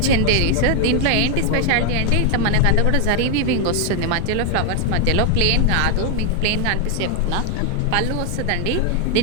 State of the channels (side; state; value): both; different; correlation 0.00